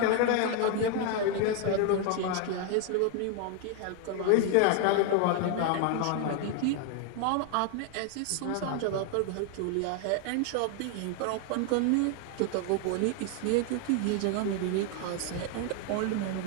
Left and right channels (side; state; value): both; different; correlation 0.01